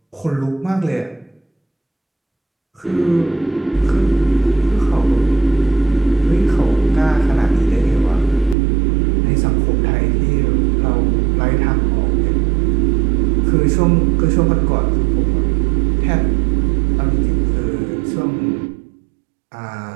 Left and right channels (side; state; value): left; drops out; at 8.6 s